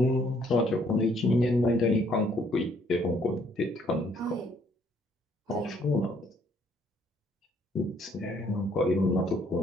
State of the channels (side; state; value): both; normal; correlation 0.65